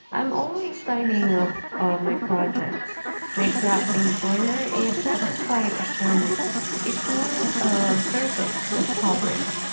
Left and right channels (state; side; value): inverted; both; correlation -1.00